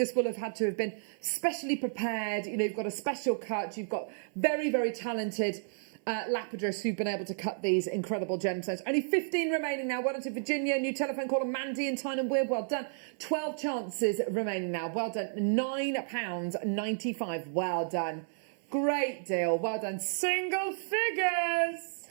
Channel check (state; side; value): silent; left; 57 dB below the other